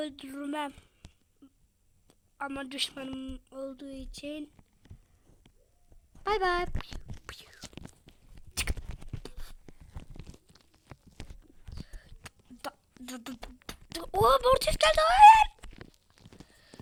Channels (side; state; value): both; identical; correlation 1.00